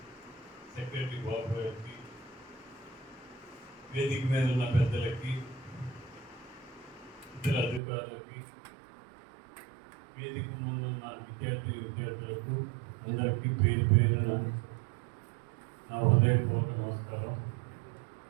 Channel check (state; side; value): drops out; left; at 7.8 s